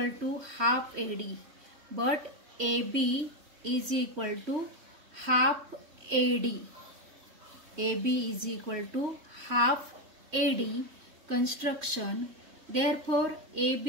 to half AD, but AB is equal to half AD, AB is equal to half AD, construction. Therefore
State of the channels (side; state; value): left; late; 3.1 ms